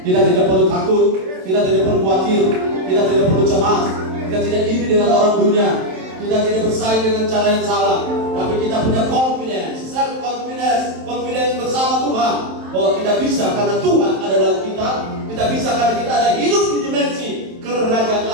Kita tidak perlu takut, kita tidak perlu khawatir, kita tidak perlu cemas, kita tidak iri dengan orang dunia, kita tidak bersaing dengan cara yang salah, tapi kita punya confidence, self confidence bersama Tuhan bahwa kita bisa karena Tuhan ada dalam kita. Kita bisa karena kita ada hidup di dimensi kerajaan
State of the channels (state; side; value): late; left; 27 ms